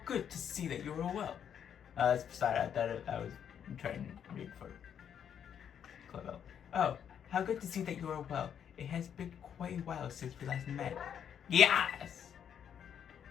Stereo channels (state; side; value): quieter; right; 8.6 dB